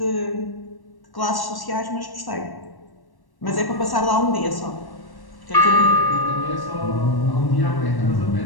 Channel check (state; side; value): late; right; 1.1 ms